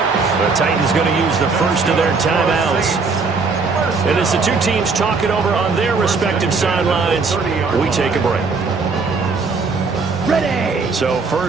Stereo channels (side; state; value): left; quieter; 4.5 dB